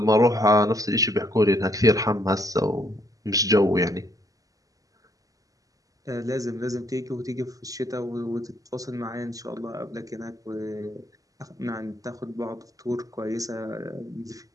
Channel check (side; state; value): left; late; 0.17 ms